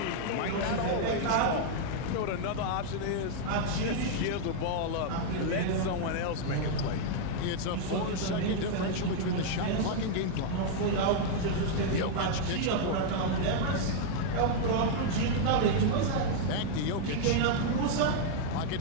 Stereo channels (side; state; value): both; different; correlation -0.01